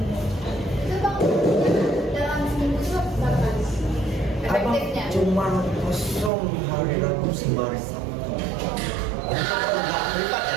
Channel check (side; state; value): left; drops out; at 6.3 s